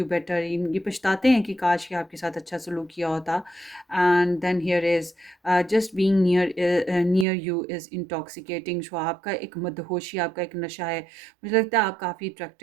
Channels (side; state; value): left; drops out; at 7.2 s